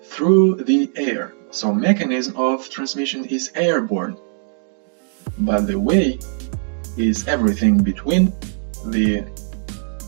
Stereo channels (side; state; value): left; silent; digital silence